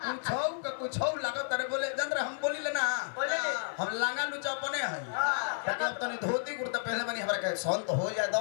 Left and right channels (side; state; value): right; silent; 55 dB below the other